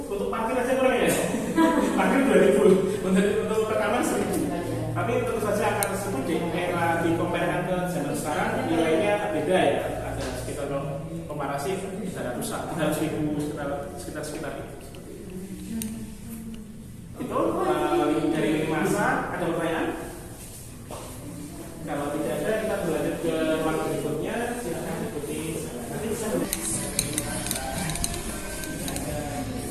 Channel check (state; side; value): identical; both; correlation 1.00